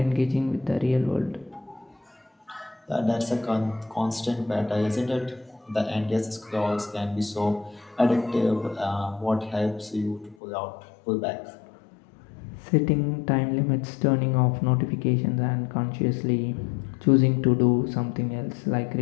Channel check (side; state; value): right; drops out; at 10.4 s